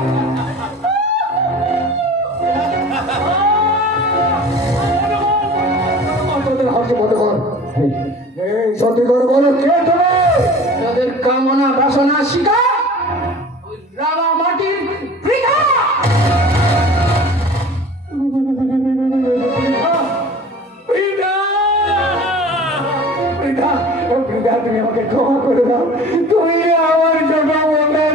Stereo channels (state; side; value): normal; both; correlation 0.42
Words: হাসি মনে কর এই সত্যি করে বলো কে তুমি? তাদের কামনা বাসনা শিকার ওই রাঙা মাটির বৃথা। তুমি আমাকে ক্ষমা করে দাও, তুমি আমার ছোট